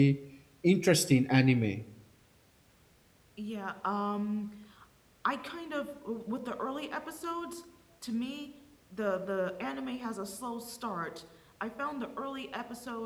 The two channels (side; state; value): both; identical; correlation 1.00